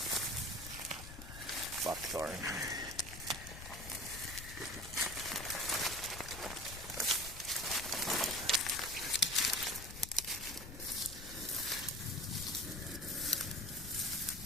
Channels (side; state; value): left; noise; rumble, 11 dB below the sound